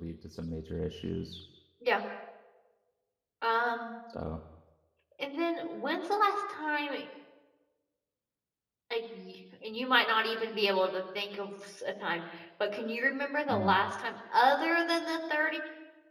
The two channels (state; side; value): identical; both; correlation 1.00